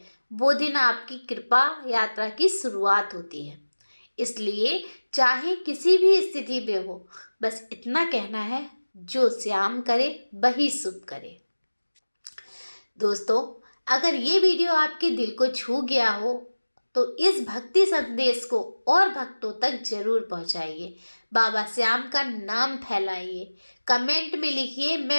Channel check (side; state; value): both; inverted; correlation -1.00